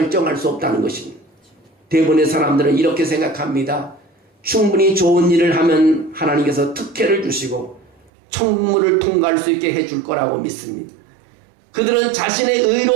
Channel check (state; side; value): drops out; left; at 8.1 s